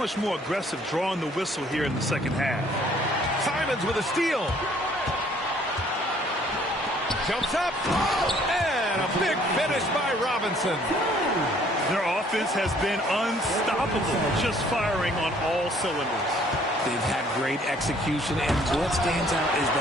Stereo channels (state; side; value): normal; both; correlation 0.60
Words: more aggressive drawing the whistle here in the second half. Simons with a steal. Jumps up. And a big finish by Robinson. Their offense has been unstoppable, just firing on all cylinders. They've had great execution, and what stands out is